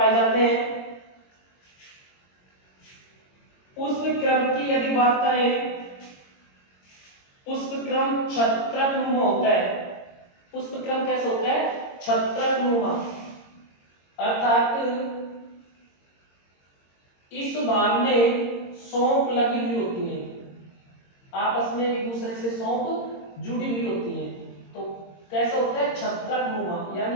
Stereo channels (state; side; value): late; right; 22 ms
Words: जाते हैं। पुष्प क्रम की यदि बात करें, पुष्प क्रम छत्रकनुमा होता है। पुष्प क्रम कैसा होता है? छत्रकनुमा अर्थात इस भाग में सौंफ लगी हुई होती है, आपस में एक दूसरे से सौंफ जुड़ी हुई होती है। तो कैसा होता है, छत्रकनुमा,